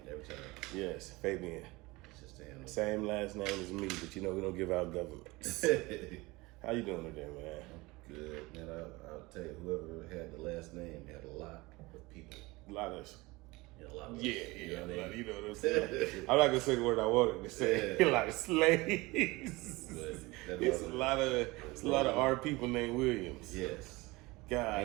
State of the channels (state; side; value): quieter; left; 22.4 dB